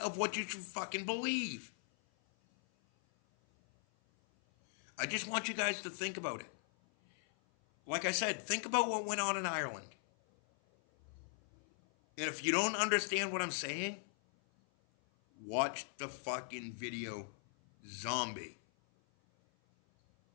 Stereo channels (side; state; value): right; silent; 52 dB below the other